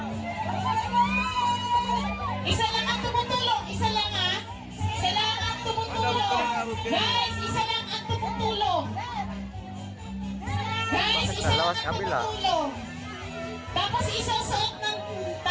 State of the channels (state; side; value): identical; both; correlation 1.00